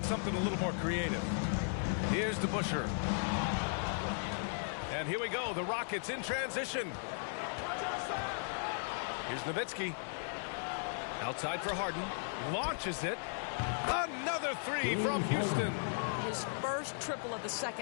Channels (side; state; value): right; silent; digital silence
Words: something a little more creative. Here's DeBusschere. And here we go. The Rockets in transition. Here's Nowitzki. Outside for Harden. Launches it. Another three from Houston. His first triple of the